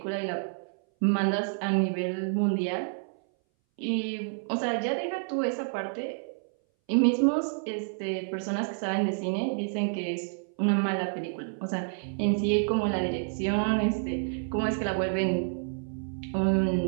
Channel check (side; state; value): left; silent; 59 dB below the other